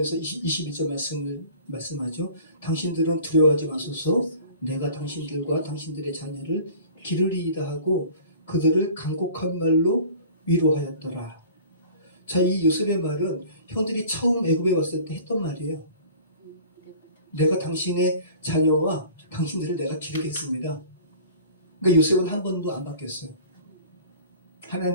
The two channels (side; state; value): both; inverted; correlation -0.45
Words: 21절 말씀하죠. 당신들은 두려워하지 마소서. 내가 당신들과 당신들의 자녀를 기르리이다 하고 그들을 간곡한 말로 위로하였더라. 자, 이 요셉의 말은 형들이 처음 애굽에 왔을 때 했던 말이에요. 내가 당신의 자녀와 당신들을 내가 기르겠습니다. 그러니까 요셉은 한 번도 안 바뀌었어요.